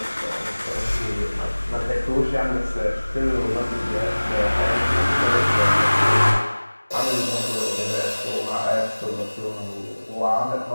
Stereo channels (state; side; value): inverted; both; correlation -1.00